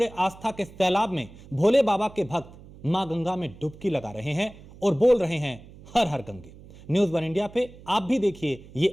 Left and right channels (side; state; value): right; noise; hum, 20 dB below the sound